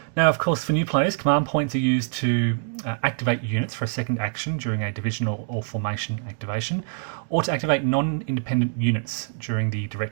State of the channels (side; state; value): left; silent; digital silence